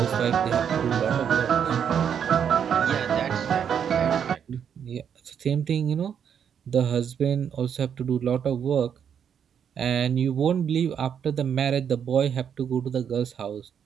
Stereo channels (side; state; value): left; quieter; 8.1 dB